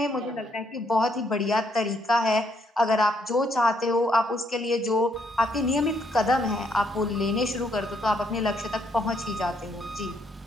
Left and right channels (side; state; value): both; normal; correlation 0.72